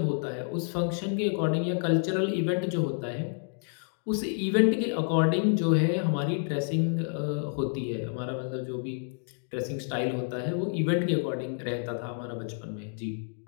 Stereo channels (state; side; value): silent; right; 58 dB below the other